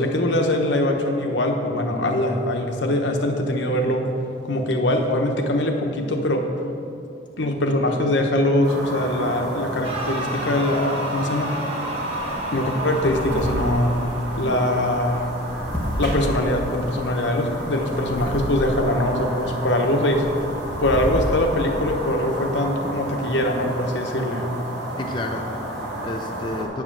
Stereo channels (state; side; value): normal; both; correlation 0.33